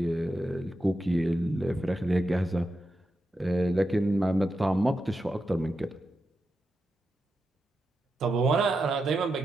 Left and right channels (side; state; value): both; normal; correlation 0.88